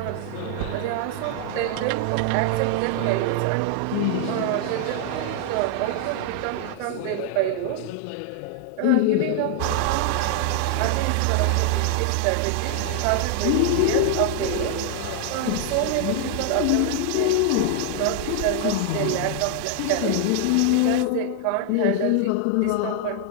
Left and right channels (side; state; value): both; different; correlation 0.00